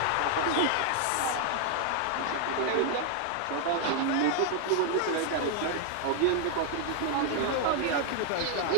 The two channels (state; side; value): different; both; correlation 0.00